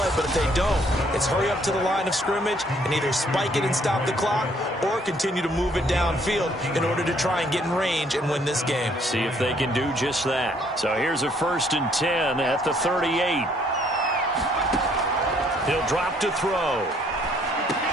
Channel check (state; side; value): normal; both; correlation 0.65